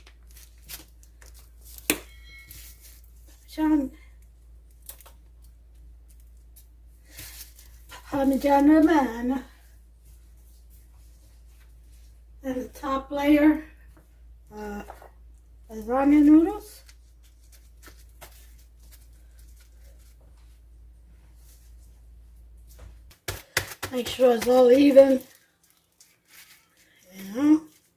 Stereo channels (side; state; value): both; identical; correlation 1.00